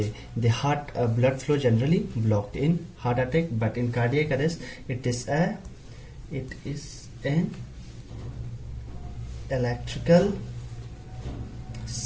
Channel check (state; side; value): identical; both; correlation 1.00